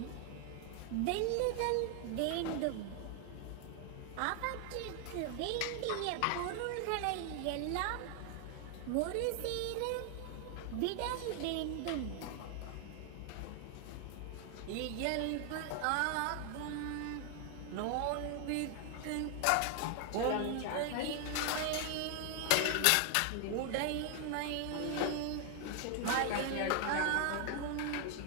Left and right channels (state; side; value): different; both; correlation 0.00